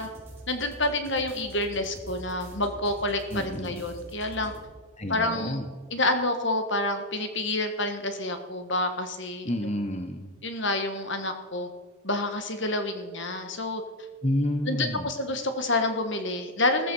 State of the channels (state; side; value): normal; both; correlation -0.01